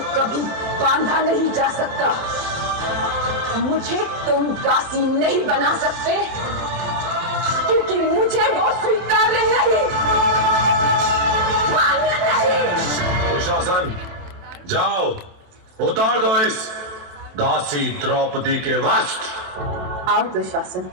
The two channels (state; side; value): late; left; 27 ms